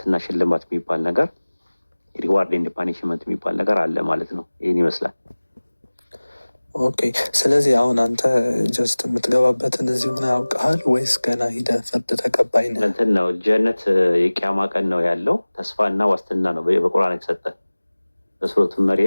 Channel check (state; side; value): inverted; both; correlation -1.00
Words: ሽልማት የሚባል ነገር ሪዋርድ ኤንድ ፓኒሽመንት የሚባል ነገር አለ ማለት ነው። ይህን ይመስላል። ኦኬ። ስለዚህ አሁን አንተ ጀስት የምትገባበትን እዚሁ ነው ያውቀሃል ወይስ ገና ሂደህ ፍርድ ተቀባይ ነህ? እንትን ነው ጀነት የቂያማ ቀን ነው ያለው ተስፋና ዋስትና ነው በቁርአን የተሰጠ። በሱረቱ